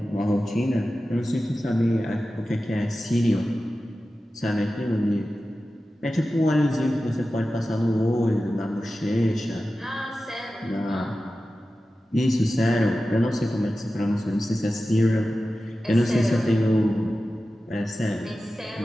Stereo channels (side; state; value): both; normal; correlation 0.94